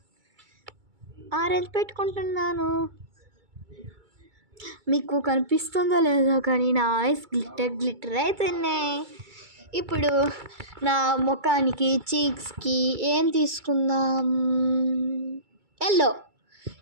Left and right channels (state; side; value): late; left; 2.3 ms